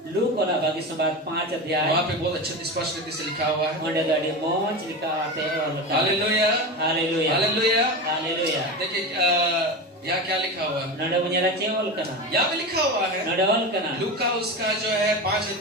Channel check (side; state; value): both; normal; correlation 0.23